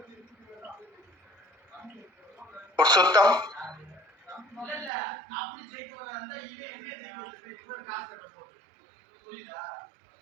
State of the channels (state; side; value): drops out; left; at 4.9 s